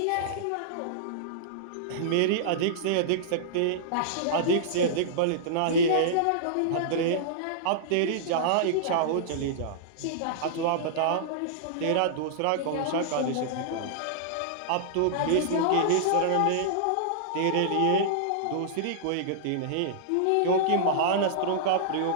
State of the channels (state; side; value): different; both; correlation -0.02